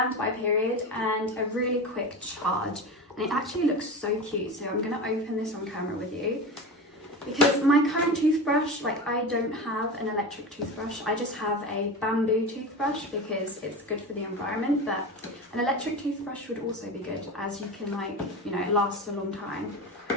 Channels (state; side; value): normal; both; correlation 0.26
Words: period and a really quick charge. And it actually looks so cute, so I'm gonna open this on camera with you. Because my current toothbrush, like, I don't have an electric toothbrush, I just have a bamboo toothbrush because it's good for the environment, but an electric toothbrush would also be good, as you can, like, you know, it lasts a long time.